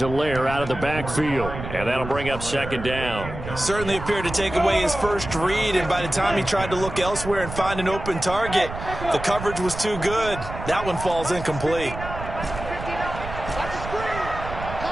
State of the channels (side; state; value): right; noise; rumble, 9 dB below the sound